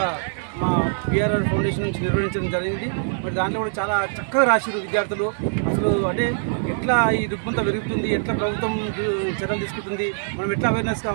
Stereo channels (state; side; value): silent; left; digital silence